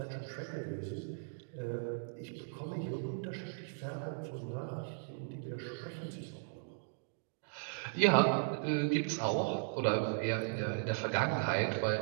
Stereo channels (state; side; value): silent; left; digital silence